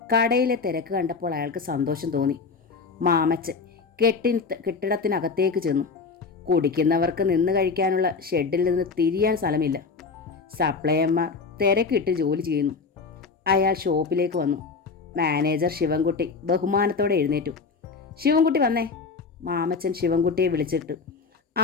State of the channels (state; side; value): quieter; right; 4.8 dB